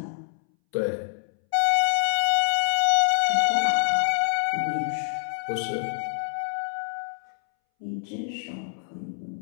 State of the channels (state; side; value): silent; right; 61 dB below the other